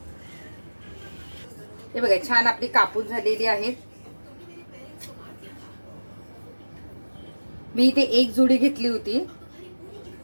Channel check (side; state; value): both; inverted; correlation -1.00